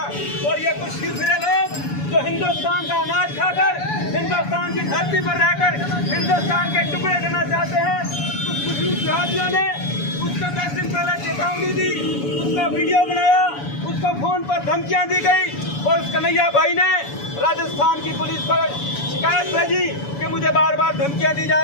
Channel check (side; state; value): right; late; 7.0 ms